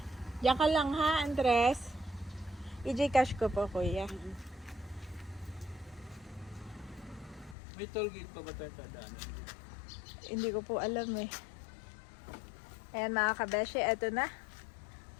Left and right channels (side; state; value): right; drops out; at 7.6 s